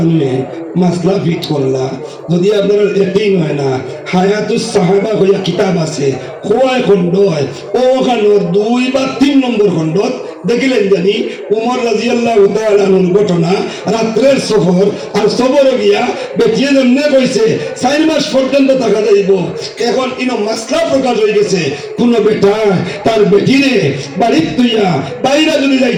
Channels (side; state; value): both; identical; correlation 1.00